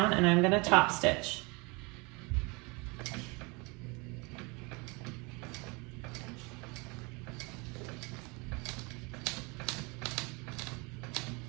and I'm gonna top stitch.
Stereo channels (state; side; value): quieter; left; 28.4 dB